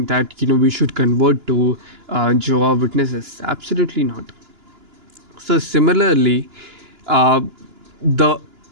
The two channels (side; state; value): left; late; 2.9 ms